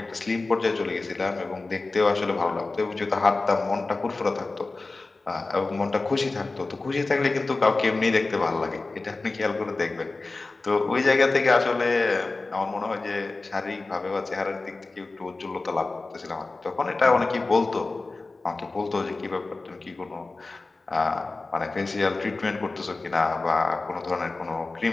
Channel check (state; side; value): quieter; right; 3.5 dB